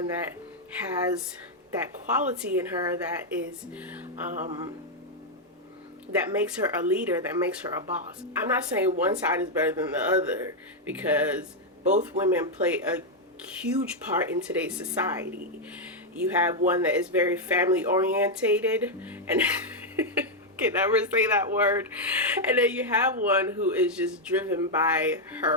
that has that quality in her that is that makes her a leader, that makes her a boss. I'm not saying one side is better than the other, because both women play a huge part in today's society. You have one that is very family orientated, and can never say that word, and then you have one who is just driven by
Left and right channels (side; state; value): both; normal; correlation 0.00